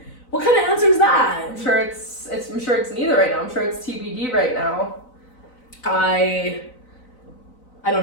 what kind of answer is that? I'm sure it's neither right now. I'm sure it's TBD right now. I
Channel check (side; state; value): right; late; 4.0 ms